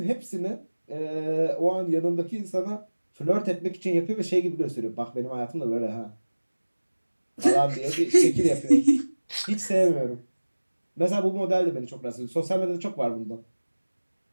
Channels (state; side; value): inverted; both; correlation -1.00